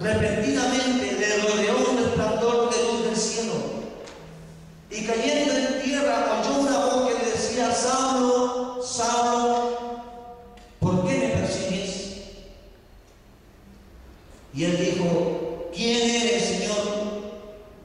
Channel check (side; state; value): both; identical; correlation 1.00